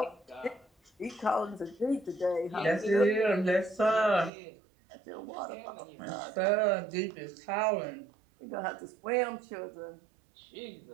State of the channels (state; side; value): drops out; left; at 4.3 s